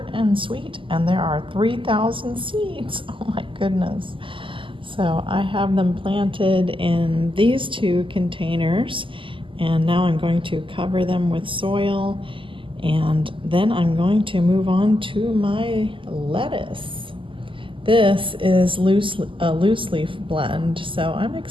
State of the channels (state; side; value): late; left; 0.25 ms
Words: and Sweet, and there are 3,000 seeds. Oh my goodness. So I have them planted in these 2 containers, and now I'm going to cover them with soil, and then I'm going to move on to my lettuce. This is a loose leaf blend, so I'm